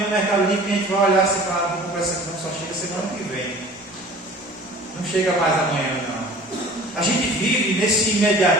Mercado Livre que a gente vai olhar assim, claro, vou comprar essa aqui, não, só chega semana que vem. Não chega mais amanhã não. A gente vive nesse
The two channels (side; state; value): both; normal; correlation 0.45